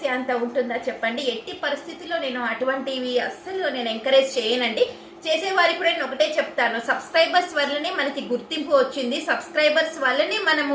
అంత ఉంటుందా చెప్పండి? ఎట్టి పరిస్థితుల్లో నేను అటువంటివి అస్సలు నేను ఎంకరేజ్ చేయనండి. చేసేవారికి కూడా నేను ఒకటే చెప్తాను, సబ్స్క్రైబర్స్ వల్లనే మనకి గుర్తింపు వచ్చింది, సబ్స్క్రైబర్స్ వల్లనే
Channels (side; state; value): both; identical; correlation 1.00